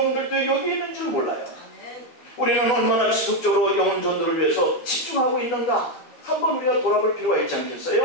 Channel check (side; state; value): right; late; 12 ms